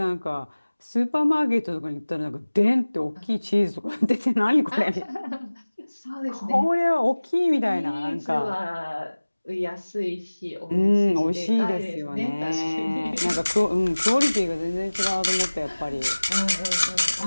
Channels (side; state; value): both; inverted; correlation -1.00